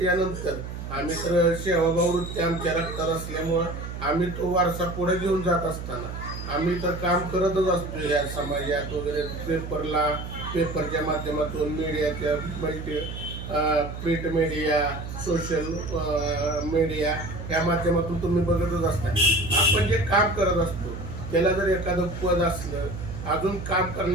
आम्ही तर सेवाभाव वृत्ती आमच्या रक्तात असल्यामुळं आम्ही तो वारसा पुढे घेऊन जात असताना आम्ही तर काम करतच असतो या समाजात वगैरे. पेपरच्या माध्यमातून मीडियाच्या प्रिंट मीडिया, सोशल मीडिया या माध्यमातून तुम्ही बघतच असता. आपण जे काम करत असतो त्याला जर एखादं पद असलं, अजून काम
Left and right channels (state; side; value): noise; right; hum, 8 dB below the sound